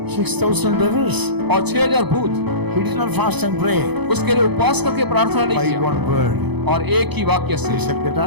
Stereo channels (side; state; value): left; late; 0.99 ms